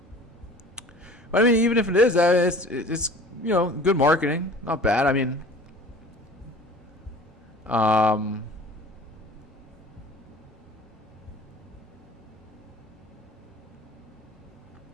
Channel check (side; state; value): both; normal; correlation 0.44